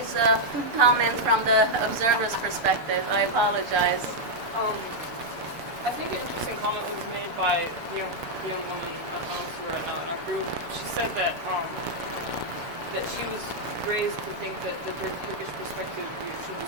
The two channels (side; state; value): left; late; 6.9 ms